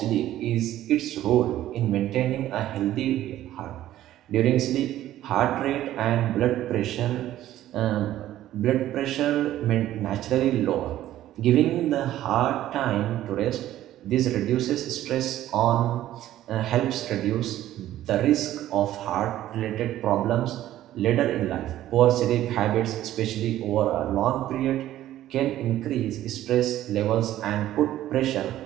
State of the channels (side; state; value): left; quieter; 13.4 dB